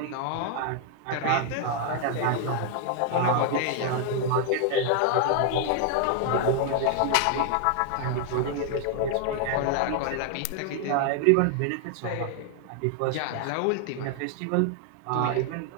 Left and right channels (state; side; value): different; both; correlation 0.00